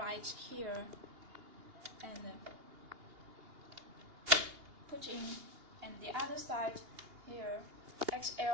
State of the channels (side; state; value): left; late; 2.8 ms